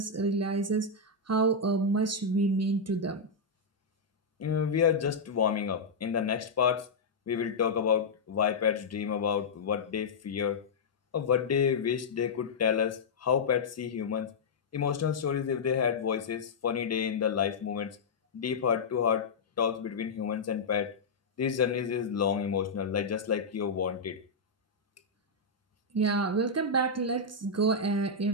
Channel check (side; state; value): right; quieter; 3.6 dB